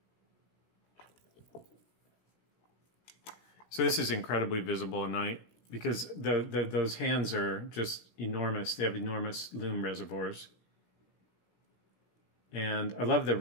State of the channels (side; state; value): right; late; 17 ms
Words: So this is incredibly visible at night because those hands are just enormous. They have enormous loom reservoirs. And I love the